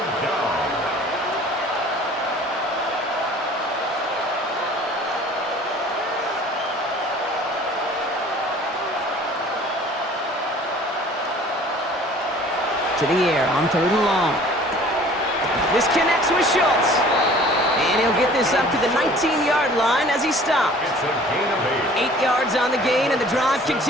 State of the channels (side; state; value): both; normal; correlation 0.49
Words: down. To the air on 3rd and long. This connects with Schultz. And he'll get this up to the 19-yard line as he stopped. It's a gain of 8. 8 yards on the gain, and the drive